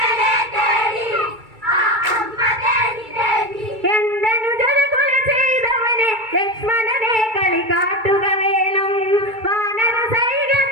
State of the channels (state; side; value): late; left; 2.3 ms